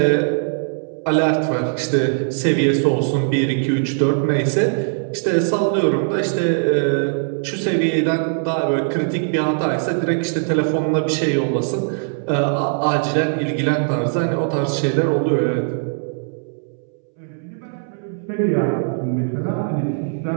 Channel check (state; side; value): silent; left; 66 dB below the other